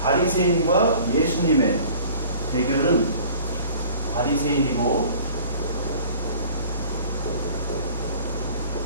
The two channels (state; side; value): inverted; both; correlation -0.47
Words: 바리새인과 예수님의 대결은, 바리새인이고